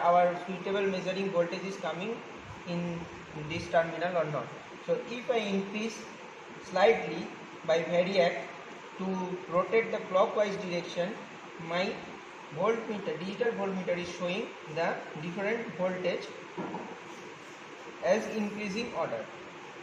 suitable measuring voltage is coming in this terminal or not. So if I increase slightly by variac to rotate the clockwise direction, my digital voltmeter is showing the different voltage as increasing order.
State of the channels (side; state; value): both; identical; correlation 1.00